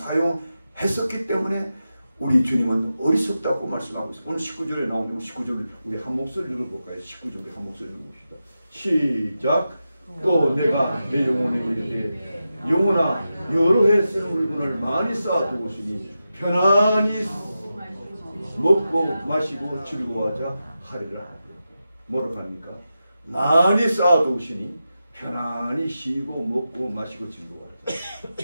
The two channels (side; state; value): both; inverted; correlation -0.91